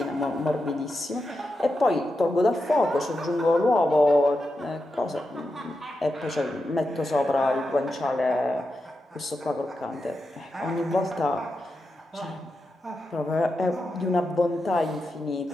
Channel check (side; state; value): both; normal; correlation 0.88